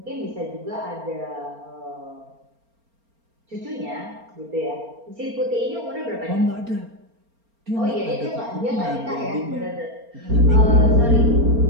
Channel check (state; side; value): late; left; 4.3 ms